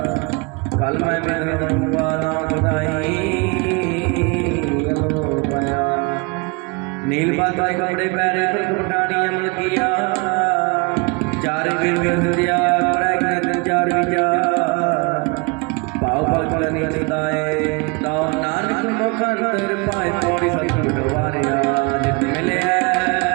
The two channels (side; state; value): left; quieter; 29.7 dB